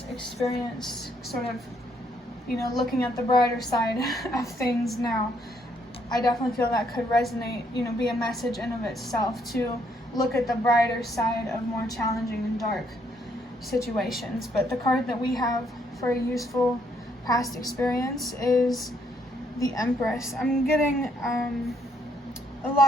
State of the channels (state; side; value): normal; both; correlation 0.71